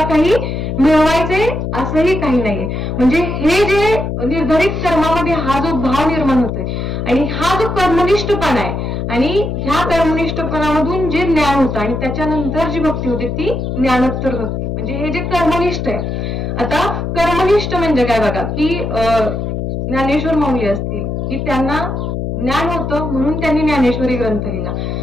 काही मिळवायचे असंही काही नाहीये. म्हणजे हे जे निर्धारित कर्मामध्ये हा जो भाव निर्माण होतोय आणि हा जो कर्मनिष्ठपणा आहे आणि ह्या कर्मनिष्ठपणामधून जे ज्ञान होतं आणि त्याच्यानंतर जी भक्ती होते ती ज्ञानोत्तर भक्ती. म्हणजे हे जे कर्मनिष्ठ आहे आता कर्मनिष्ठ म्हणजे काय बघा, की ज्ञानेश्वर माऊली असतील की त्यांना ज्ञान होतं म्हणून त्यांनी ज्ञानेश्वरी ग्रंथ लिहिला.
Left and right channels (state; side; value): noise; left; hum, 3 dB below the sound